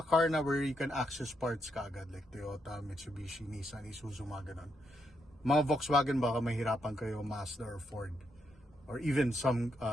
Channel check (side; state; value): both; normal; correlation 0.79